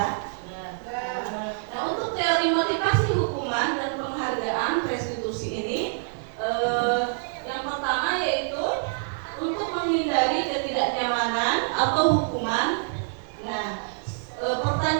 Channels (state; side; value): silent; left; 61 dB below the other